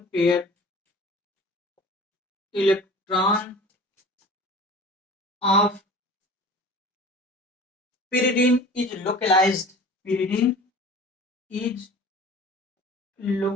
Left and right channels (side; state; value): both; normal; correlation 0.41